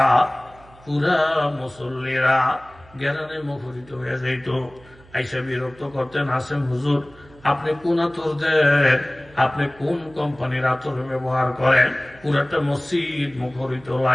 পুরা মুসল্লিরা জ্ঞানে মুখরিত হয়ে যাইত। আইসা বিরক্ত করতেন, আসেম হুজুর আপনি কোন আতর দেন, আপনি কোন কোম্পানির আতর ব্যবহার করেন, পুরাটা মসজিদ মুখরিত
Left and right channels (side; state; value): right; noise; hum, 25 dB below the sound